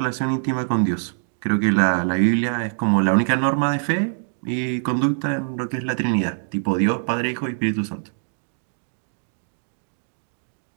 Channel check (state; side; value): silent; left; digital silence